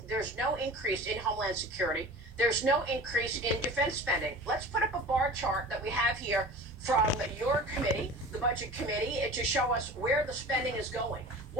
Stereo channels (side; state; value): both; normal; correlation 0.38